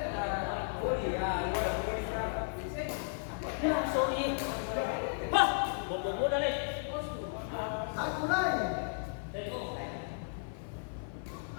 Ya, sorry. Wah, bobo dah nih.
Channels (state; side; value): silent; right; 55 dB below the other